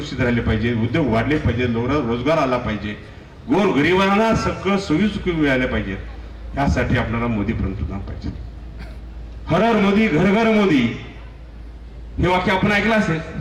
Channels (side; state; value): both; identical; correlation 1.00